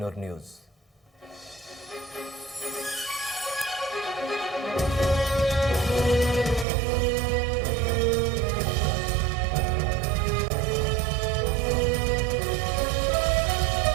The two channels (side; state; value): left; drops out; at 6.7 s